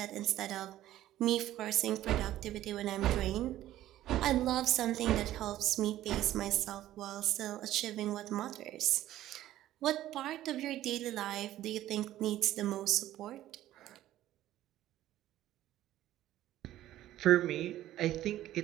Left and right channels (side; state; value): left; quieter; 13.8 dB